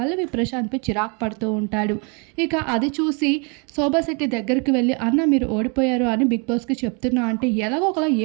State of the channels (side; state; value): left; quieter; 34.2 dB